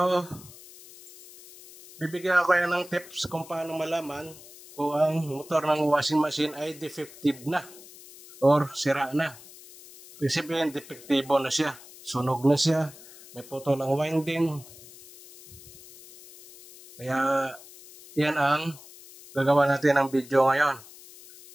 bibigyan ko kayo ng tips kung paano malaman kung ang motor ng washing machine ay defective na or sira na. Ibig sabihin, defektibo na siya. Sunog na siya. May putol ang winding. Kaya, yan ang gagawa natin ng video ngayon.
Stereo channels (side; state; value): left; noise; hiss, 19 dB below the sound